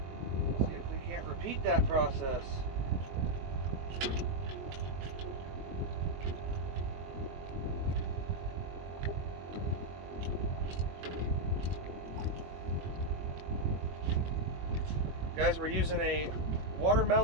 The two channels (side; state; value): left; late; 21 ms